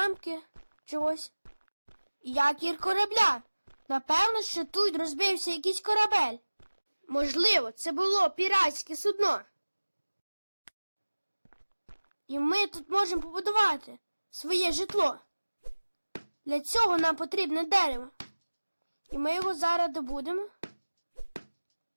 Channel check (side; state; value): both; inverted; correlation -1.00